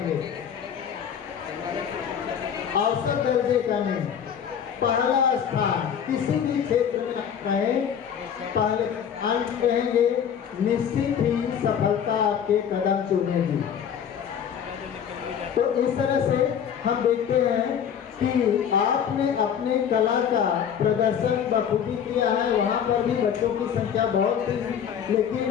औसत दर्जे का नहीं, पहला स्थान किसी भी क्षेत्र में रहें, पहले अंत रहेंगे, निश्चित ही सफलता आपके कदम चूमेगी। तो इस तरह से हम देखते हैं कि आपने अपने कला का प्रदर्शन बखूबी किया है। वहाँ पर भी बच्चों की संख्या बहुत थी,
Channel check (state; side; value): quieter; right; 8.3 dB